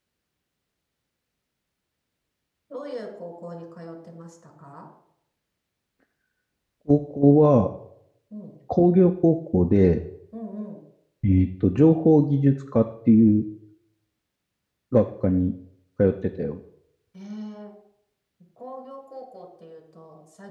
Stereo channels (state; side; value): identical; both; correlation 1.00